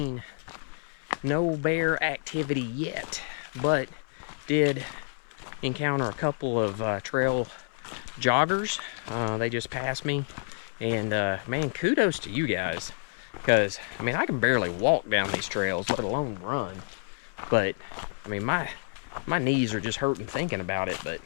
No bear activity yet, but did encounter a couple of trail joggers. They just passed me, and man, kudos to you guys, because I mean I can barely walk down these trails, let alone run. But I mean my knees are just hurting thinking about it. But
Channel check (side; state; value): right; silent; 59 dB below the other